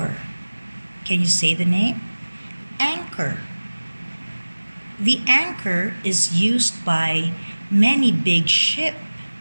Can you say the name? Anchor. The anchor is used by many big ships.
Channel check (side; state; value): both; inverted; correlation -1.00